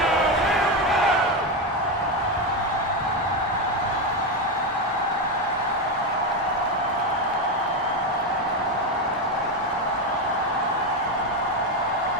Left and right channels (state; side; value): normal; both; correlation 0.11